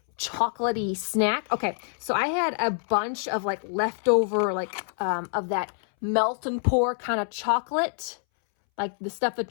chocolatey snack. Okay, so I had a bunch of like leftover of that melt and pour kind of chocolate, like the stuff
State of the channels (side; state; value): right; silent; 61 dB below the other